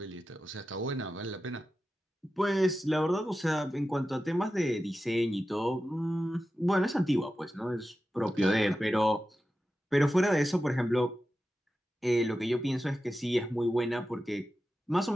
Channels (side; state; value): both; normal; correlation 0.92